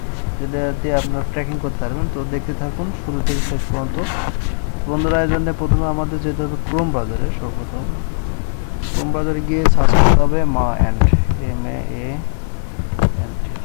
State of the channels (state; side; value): silent; right; digital silence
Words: যেটা দিয়ে আপনারা ট্র্যাকিং করতে পারবেন। তো দেখতে থাকুন শুরু থেকে শেষ পর্যন্ত। বন্ধুরা, এই জন্য প্রথমে আমাদের যেতে হবে ক্রোম ব্রাউজারে। সর্বপ্রথম ক্রোম ব্রাউজারে গিয়ে সার্চ করতে হবে মা অ্যান্ড,